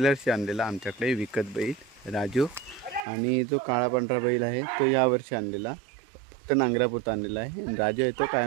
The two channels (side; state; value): left; drops out; at 3.0 s